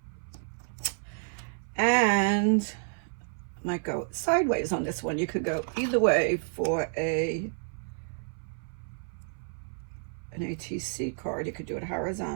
And might go sideways on this one. You could go either way for an ATC card. You could do it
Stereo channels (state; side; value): silent; left; 58 dB below the other